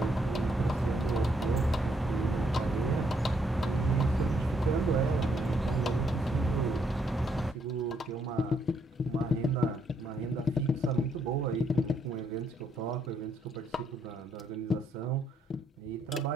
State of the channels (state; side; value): normal; both; correlation 0.73